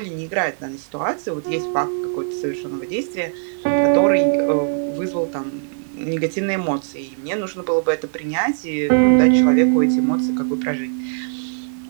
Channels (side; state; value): left; silent; 58 dB below the other